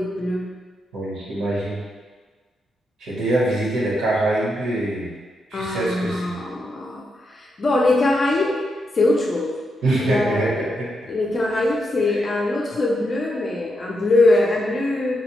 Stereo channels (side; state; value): both; normal; correlation 0.83